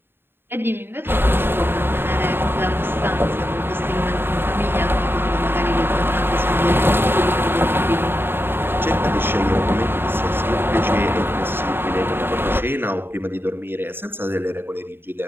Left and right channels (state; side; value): late; left; 0.11 ms